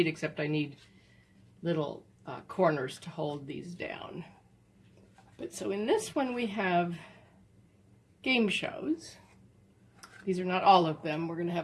except I need little corners to hold these down. But so in this one we have game shows. These are not all of them. We're going to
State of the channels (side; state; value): both; identical; correlation 1.00